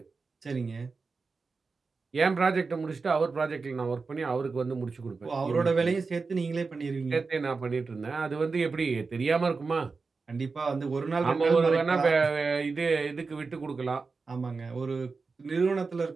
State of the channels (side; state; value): left; quieter; 4.4 dB